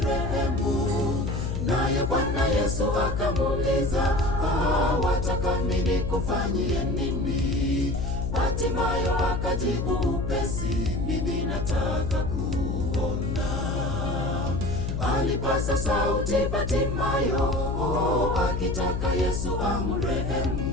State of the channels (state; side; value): noise; left; hum, 2 dB below the sound